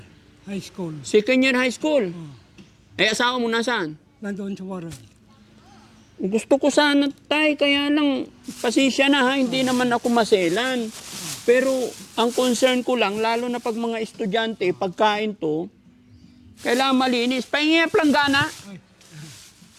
high school. Second year high school. Oh. Eh, asawa mo nasaan? Nandoon sa Waray. Gusto ko sana tay, kaya lang pasensya na ha, hindi naman ako maselan. Pero ang concern ko lang, lalo na pag mga estudyante, pagkain to, kailangan malinis. Pahingi ang planggana.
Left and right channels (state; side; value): identical; both; correlation 1.00